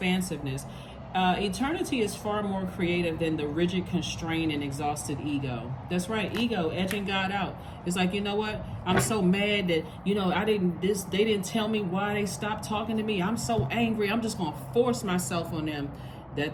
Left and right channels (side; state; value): both; identical; correlation 1.00